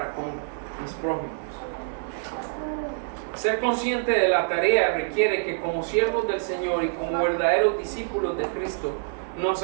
con mis prójimos. Ser consciente de la tarea requiere que como siervos del Señor y como verdaderos discípulos de Cristo, nos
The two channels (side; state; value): left; silent; 61 dB below the other